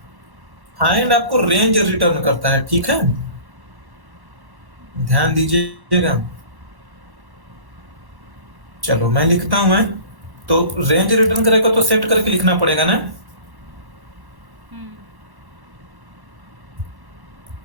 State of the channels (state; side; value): late; left; 1.1 ms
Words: फाइंड आपको रेंज रिटर्न करता है, ठीक है, ध्यान दीजिएगा। चलो मैं लिखता हूं, मैं तो रेंज रिटर्न करेगा तो सेट करके लिखना पड़ेगा ना।